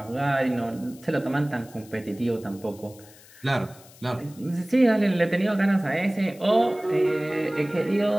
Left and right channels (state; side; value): noise; left; hiss, 23 dB below the sound